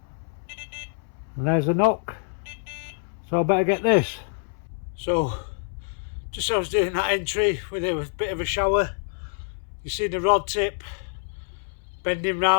And there's a knock. So I better get this. So, just as I was doing that entry with a bit of a shower, you see the rod tip bending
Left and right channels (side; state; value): right; silent; 61 dB below the other